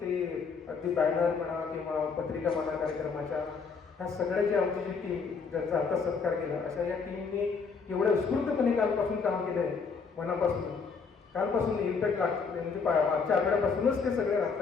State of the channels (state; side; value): quieter; right; 5.2 dB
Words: ते अगदी बॅनर म्हणा किंवा पत्रिका म्हणा कार्यक्रमाच्या, ह्या सगळ्याची आमची जी टीम ज्यांचा आता सत्कार केला, अशा या टीमने एवढ्या उत्स्फूर्तपणे कालपासून काम केलं आहे. मनापासून कालपासून इम्पॅक्ट लागते, म्हणजे मागच्या आठवड्यापासूनच ते सगळे राहत